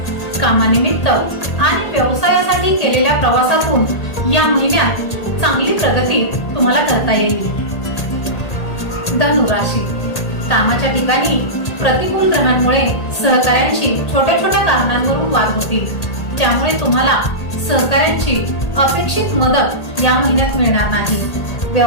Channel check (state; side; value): late; right; 1.8 ms